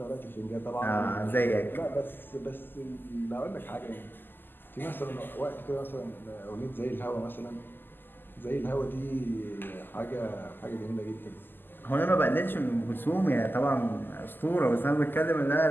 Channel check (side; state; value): right; late; 0.094 ms